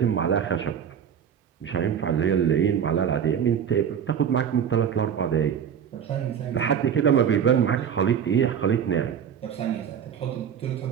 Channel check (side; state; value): left; quieter; 8.2 dB